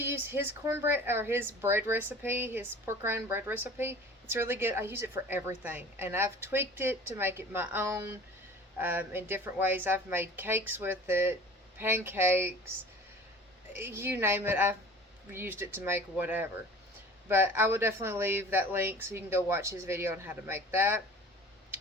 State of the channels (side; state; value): both; normal; correlation 0.44